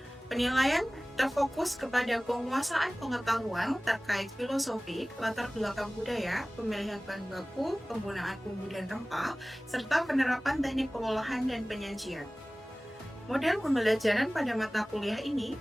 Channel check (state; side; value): normal; both; correlation 0.98